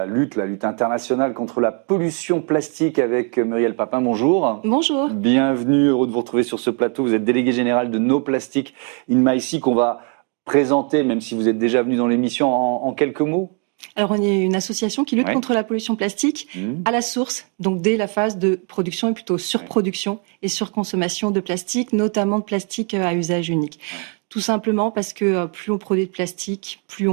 lutte internationale contre la pollution plastique avec Muriel Papin. Bonjour. Bonjour. Bienvenue, heureux de vous retrouver sur ce plateau. Vous êtes délégué général de No Plastic in My Sea qu'on va présenter, même si vous êtes déjà venu dans l'émission, en quelques mots. Alors, on est une association qui lutte contre la pollution plastique à la source, donc dès la phase de production et plutôt surproduction et surconsommation de plastique, notamment de plastique à usage unique. Tout simplement parce que plus on produit de plastique, plus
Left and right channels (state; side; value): quieter; left; 38.3 dB